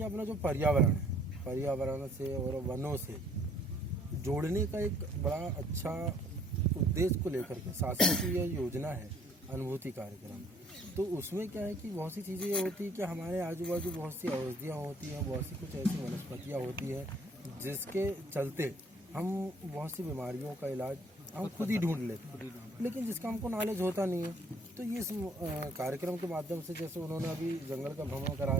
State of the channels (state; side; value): normal; both; correlation 0.60